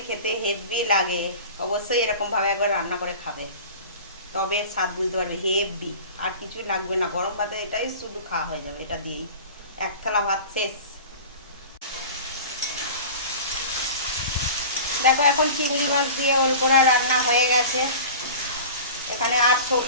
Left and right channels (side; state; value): both; inverted; correlation -0.37